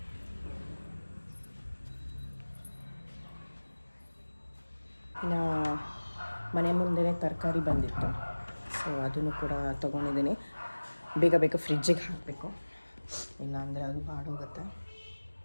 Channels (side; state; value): both; inverted; correlation -1.00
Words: ಇನ್ನು ಮನೆ ಮುಂದೆನೇ ತರಕಾರಿ ಬಂದಿತ್ತು, ಸೊ ಅದನ್ನು ಕೂಡ ತೊಗೊಂಡಿದ್ದೀನಿ. ಬೇಗ ಬೇಗ ಫ್ರಿಜ್ಜಿಗೆ ಹಾಕಬೇಕು, ಇಲ್ಲಾಂದರೆ ಅದು ಬಾಡೋಗುತ್ತೆ.